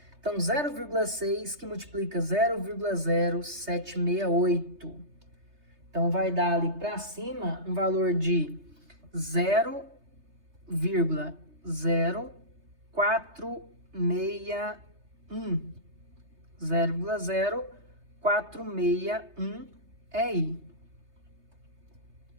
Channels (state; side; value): late; left; 3.3 ms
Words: Então, 0,6 que multiplica 0,0768. Então, vai dar ali para cima um valor de 0,0461. 0,0461 EI.